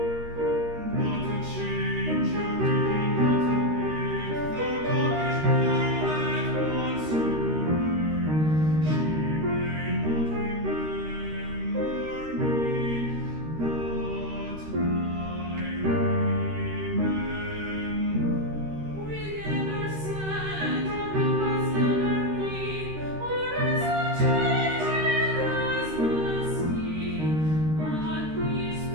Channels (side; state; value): left; late; 13 ms